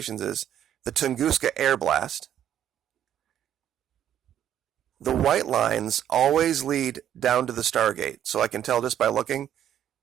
is the Tunguska Air Blast. The white lines always lead down to the Stargate. So I can tell just by looking,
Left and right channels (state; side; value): quieter; left; 10.4 dB